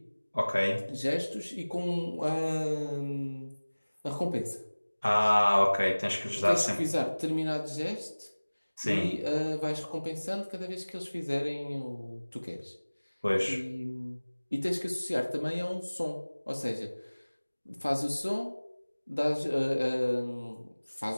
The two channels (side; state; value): both; inverted; correlation -1.00